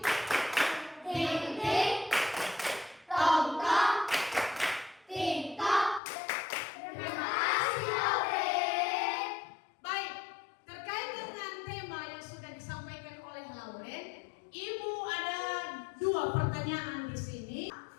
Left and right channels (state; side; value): drops out; right; at 6.0 s